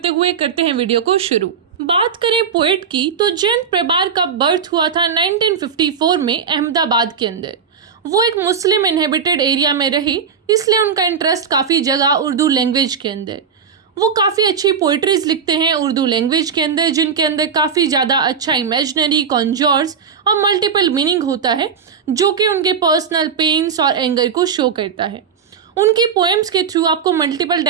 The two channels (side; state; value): left; quieter; 6.7 dB